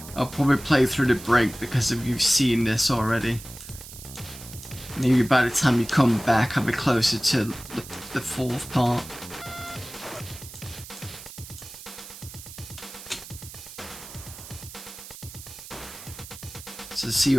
I'll probably play through the break because if you've seen this already. Maybe by the time you come back, I'll be closer to the fourth part. So see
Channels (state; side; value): noise; right; hiss, 14 dB below the sound